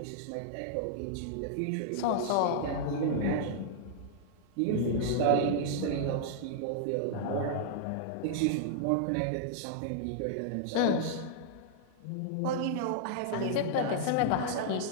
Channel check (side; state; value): both; different; correlation -0.01